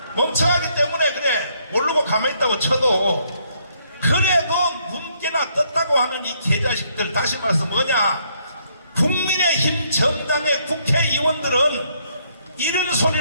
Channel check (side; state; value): both; inverted; correlation -0.70